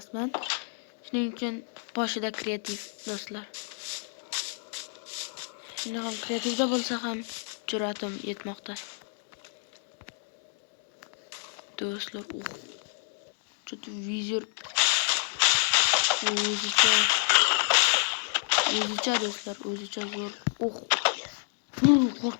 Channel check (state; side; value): silent; right; 58 dB below the other